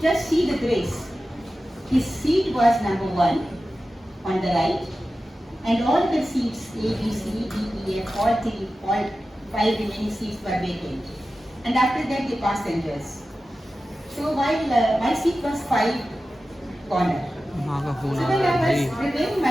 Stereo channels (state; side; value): normal; both; correlation 0.94